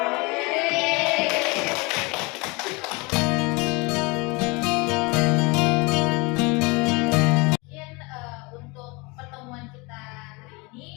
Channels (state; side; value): quieter; right; 27.0 dB